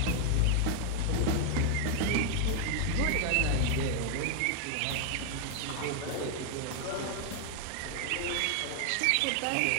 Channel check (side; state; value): both; different; correlation 0.00